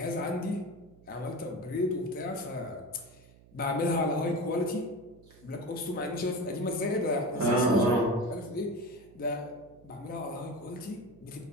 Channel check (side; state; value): right; noise; hum, 24 dB below the sound